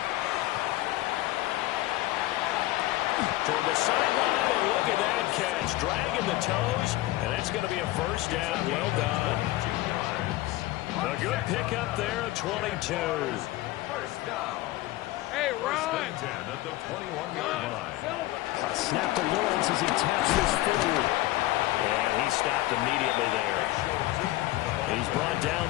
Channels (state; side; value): quieter; right; 17.4 dB